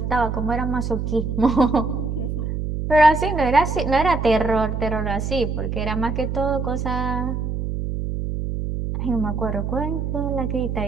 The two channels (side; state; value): right; noise; hum, 3 dB below the sound